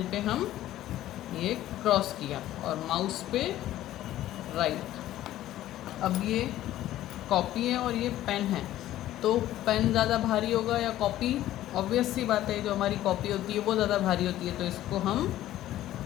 पे हम ये क्रॉस किया और माउस पे राइट। अब ये कॉपी है और ये पेन है, तो पेन ज़्यादा भारी होगा या कॉपी? ऑब्वियस सी बात है, जो हमारी कॉपी होती है वो ज़्यादा भारी होती है। तो इसको हम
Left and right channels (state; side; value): quieter; right; 13.8 dB